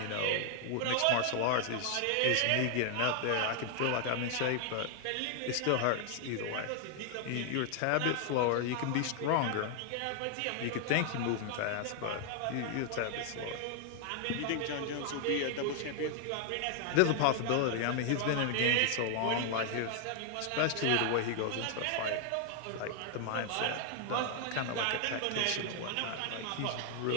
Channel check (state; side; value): different; both; correlation 0.00